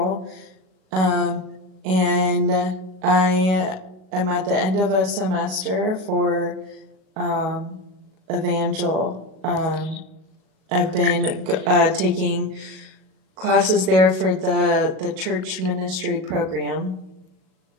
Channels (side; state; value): left; late; 37 ms